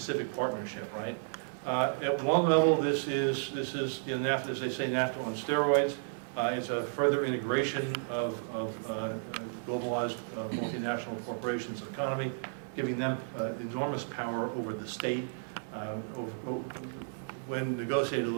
Partnership, right? At one level, this is NAFTA, as they say, NAFTA on steroids. It's a further integration of globalized multinational corporations and economy, giving them enormous power over the state. When negotiated, it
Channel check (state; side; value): silent; left; digital silence